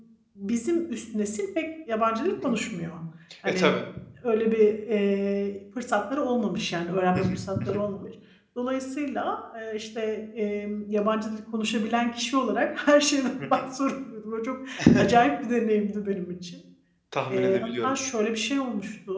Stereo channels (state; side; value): identical; both; correlation 1.00